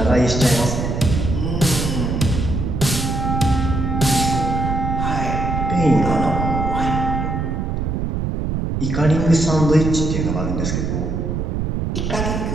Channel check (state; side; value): noise; right; rumble, 1 dB below the sound